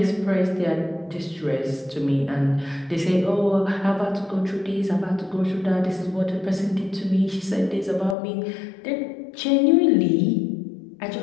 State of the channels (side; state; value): right; drops out; at 8.2 s